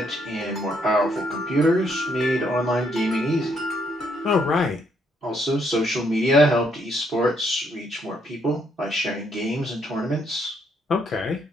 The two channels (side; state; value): both; normal; correlation 0.72